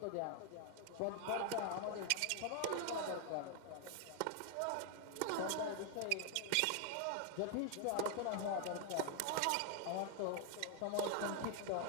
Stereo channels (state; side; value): different; both; correlation 0.00